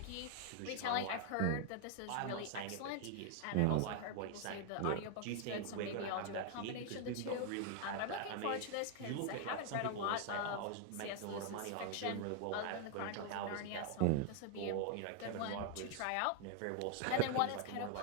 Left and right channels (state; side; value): different; both; correlation 0.00